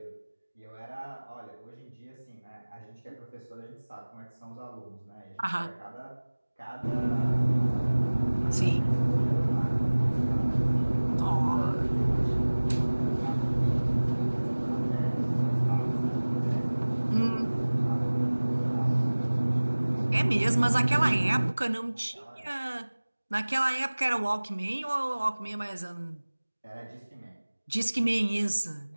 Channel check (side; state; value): both; inverted; correlation -1.00